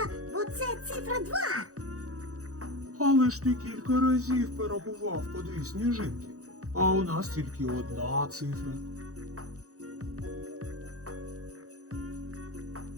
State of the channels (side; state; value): left; late; 0.65 ms